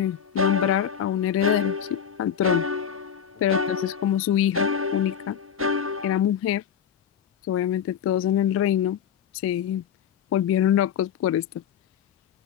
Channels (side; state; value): right; quieter; 8.4 dB